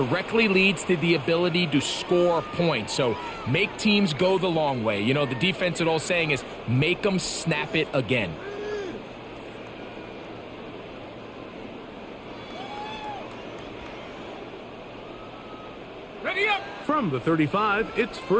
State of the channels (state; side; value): identical; both; correlation 1.00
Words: leads to the ability to score points. So make teams go the long way. You know, the defense, old saying is, make them snap it again. Ready up! From the 35, it's